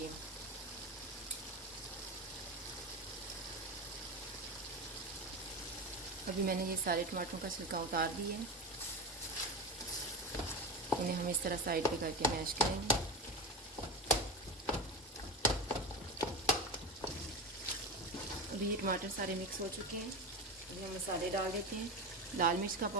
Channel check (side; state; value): both; normal; correlation 0.22